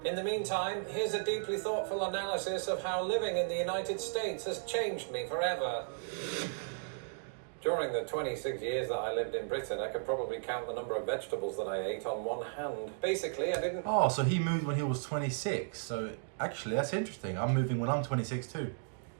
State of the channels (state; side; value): silent; left; digital silence